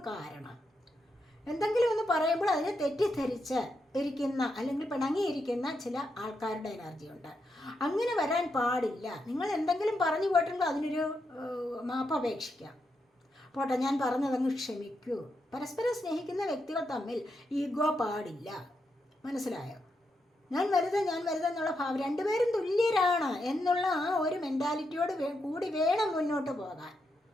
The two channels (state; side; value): normal; both; correlation 0.83